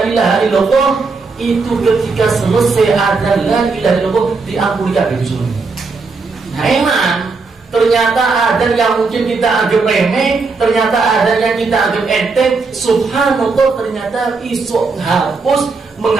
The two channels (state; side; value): quieter; left; 4.3 dB